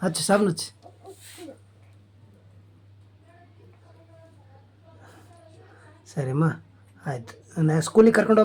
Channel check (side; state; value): both; identical; correlation 1.00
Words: ಹಚ್ಚು, ಸಾಬೂನು ಹಚ್ಚು. ಸರಿಮ್ಮ, ಆಯ್ತು. ನಾ ಸ್ಕೂಲಿಗೆ ಕರ್ಕೊಂಡು